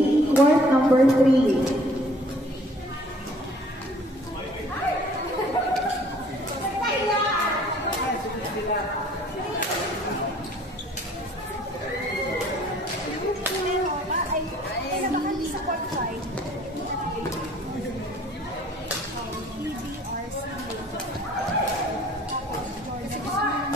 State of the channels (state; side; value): normal; both; correlation 0.55